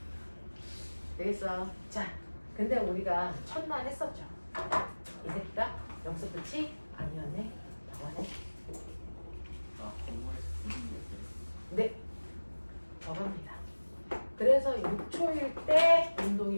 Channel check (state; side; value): inverted; both; correlation -1.00